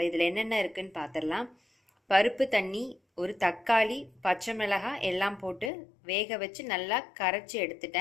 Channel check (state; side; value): drops out; right; at 5.7 s